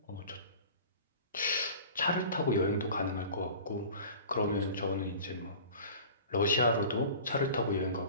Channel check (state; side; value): inverted; both; correlation -0.41